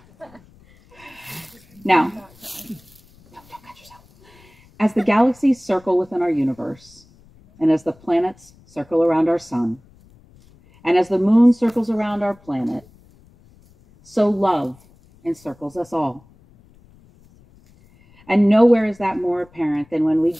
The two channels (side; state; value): left; noise; rumble, 28 dB below the sound